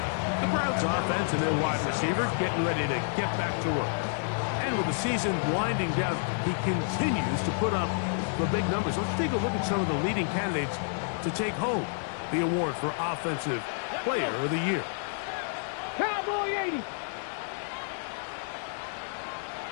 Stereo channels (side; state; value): right; silent; digital silence